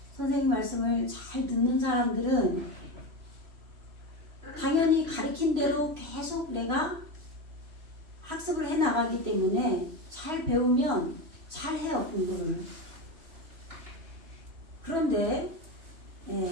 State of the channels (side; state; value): left; late; 3.0 ms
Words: 선생님 말씀을 잘 듣는 사람들은 당연히 가르친 대로 계속 내가 학습을 해 나가기 때문에 잘 배우면 잘 해요, 공부를. 그런데